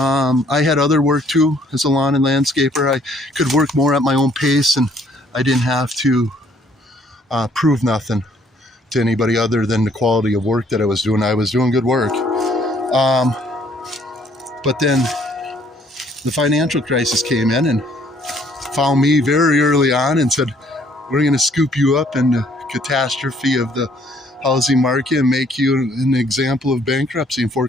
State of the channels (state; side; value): normal; both; correlation 0.63